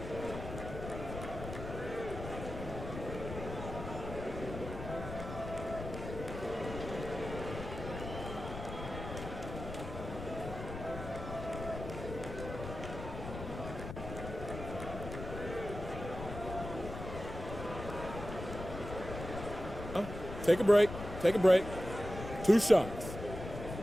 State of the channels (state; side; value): noise; left; rumble, 8 dB below the sound